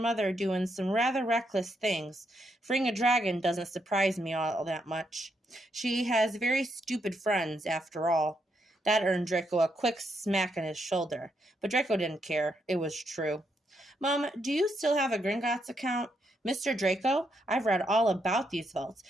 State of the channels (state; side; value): normal; both; correlation 0.78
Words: doing some rather reckless things. Freeing a dragon doesn't surprise me all that much. She has very stupid friends, after all." That earned Draco a quick smack on his shoulder, but Draco didn't care. It was true. "Mom, do you still have a Gringotts account?" "Mr. Draco, I've read all about these vaults